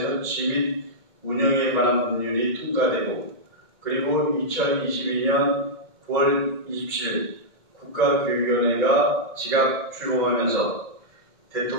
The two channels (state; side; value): late; right; 2.1 ms